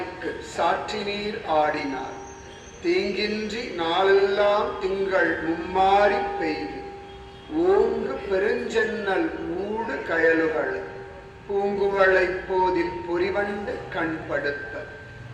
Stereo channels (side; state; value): both; identical; correlation 1.00